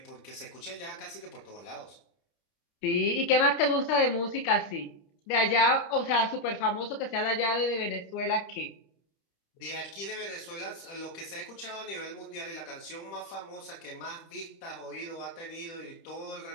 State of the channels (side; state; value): right; late; 30 ms